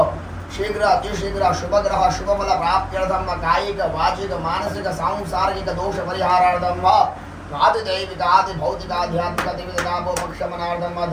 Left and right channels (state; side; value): identical; both; correlation 1.00